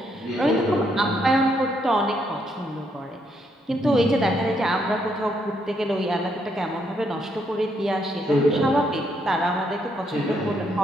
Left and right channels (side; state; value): both; normal; correlation 0.75